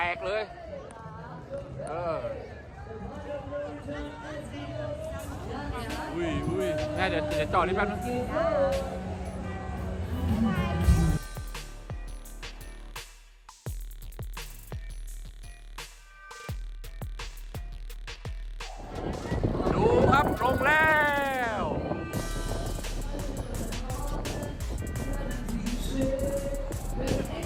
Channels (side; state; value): both; identical; correlation 1.00